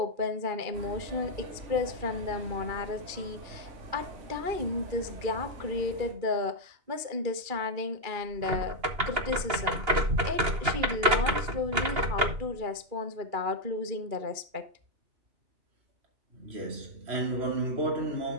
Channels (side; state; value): left; late; 2.8 ms